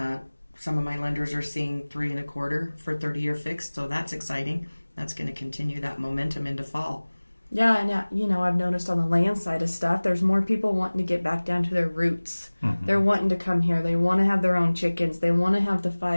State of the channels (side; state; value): both; inverted; correlation -1.00